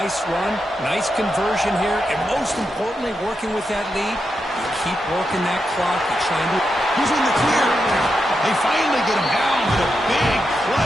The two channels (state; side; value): normal; both; correlation 0.86